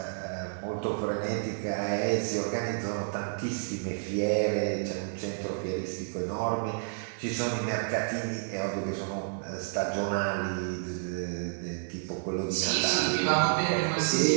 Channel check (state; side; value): silent; left; digital silence